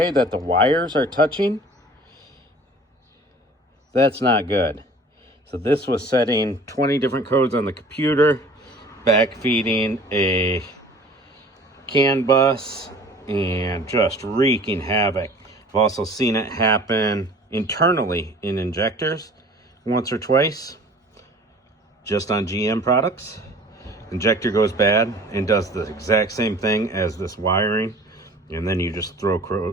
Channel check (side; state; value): both; normal; correlation 0.47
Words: that the wires are touching, that's not good. So this was setting 20 different codes on the computer, backfeeding a CAN bus, and just wreaking havoc. I've also seen it happen internally in injectors once or twice, just on GM products. Injector goes bad and does the exact same thing as this wiring, and then you just throw